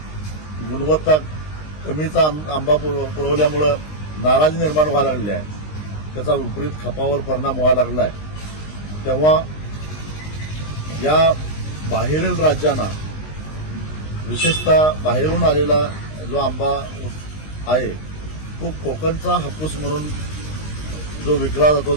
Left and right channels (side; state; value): right; late; 19 ms